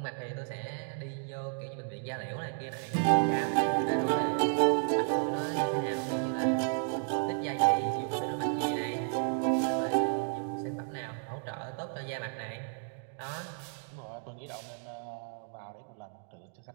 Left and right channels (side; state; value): left; silent; 56 dB below the other